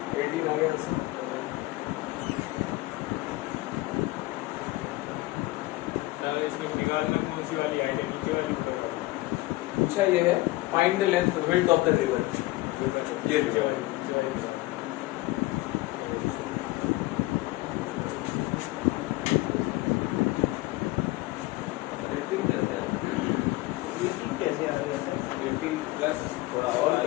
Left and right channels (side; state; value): right; quieter; 19.7 dB